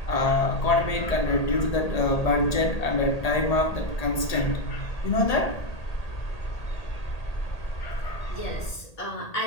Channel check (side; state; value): right; late; 1.8 ms